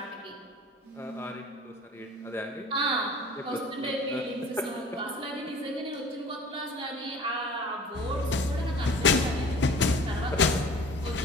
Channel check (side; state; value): both; normal; correlation 0.44